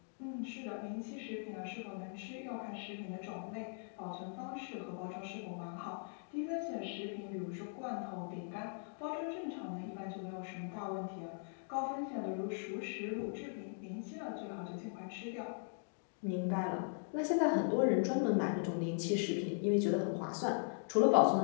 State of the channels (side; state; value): right; silent; digital silence